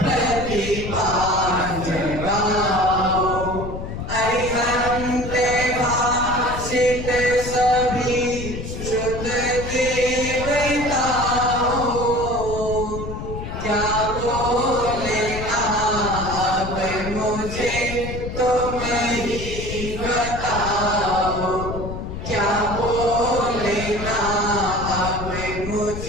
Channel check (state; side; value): noise; left; rumble, 7 dB below the sound